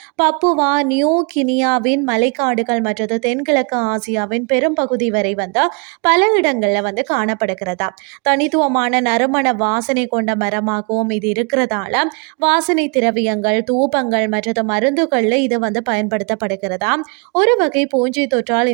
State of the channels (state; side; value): quieter; left; 35.6 dB